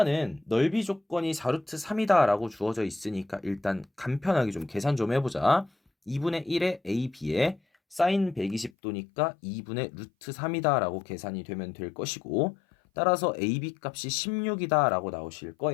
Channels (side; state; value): right; drops out; at 8.7 s